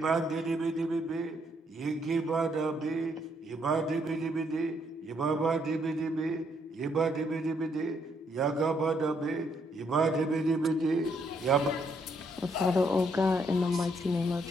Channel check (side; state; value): both; normal; correlation 0.72